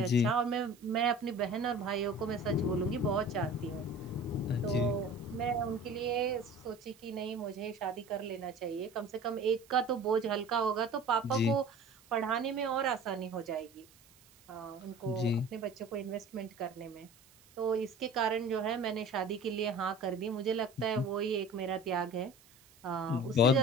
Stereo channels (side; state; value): right; noise; hiss, 27 dB below the sound